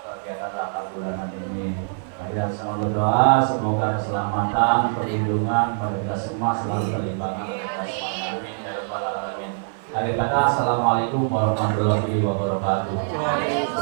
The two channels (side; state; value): left; silent; 58 dB below the other